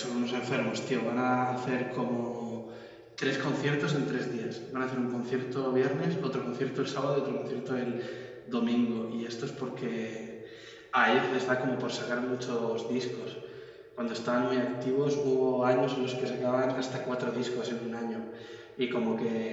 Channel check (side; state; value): both; identical; correlation 1.00